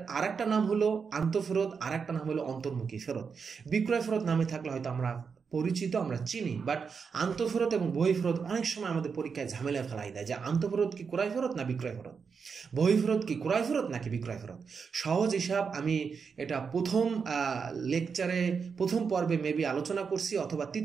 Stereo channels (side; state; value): left; quieter; 5.8 dB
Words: আরেকটা নাম হলো আন্তঃফেরত, আরেকটা নাম হলো অন্তর্মুখী ফেরত। বিক্রয় ফেরত নামে থাকলে হয়তো আমরা পরিচিত, আমরা চিনি, বাট আন্তঃফেরত এবং বহি ফেরত অনেক সময় আমাদের পরীক্ষায় ঝামেলা ফেলাই দেয় যে আন্তঃফেরত কি ক্রয় ফেরত না বিক্রয় ফেরত, বহি ফেরত কি ক্রয় ফেরত নাকি বিক্রয় ফেরত। সহজ হিসাব আমি এটা প্রথম পর্বে মেবি আলোচনা করছি, অথবা